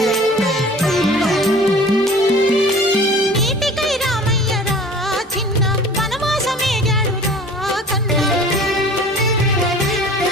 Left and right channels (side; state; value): both; normal; correlation 0.45